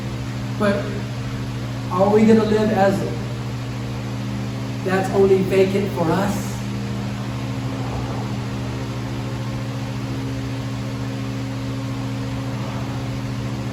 But are we going to live as that's only vacant for us?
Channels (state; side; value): identical; both; correlation 1.00